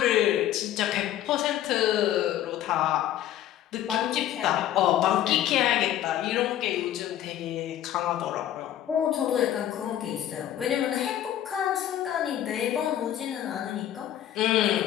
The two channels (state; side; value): quieter; right; 11.9 dB